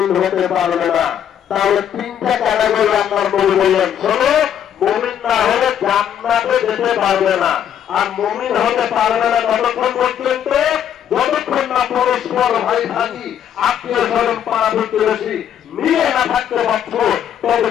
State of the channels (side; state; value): right; quieter; 9.5 dB